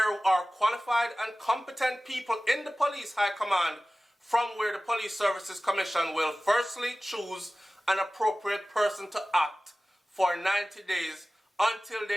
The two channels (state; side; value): normal; both; correlation 0.97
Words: are qualified and competent people in the police high command from where the Police Services Commission will firstly choose an appropriate person to act for 90 days until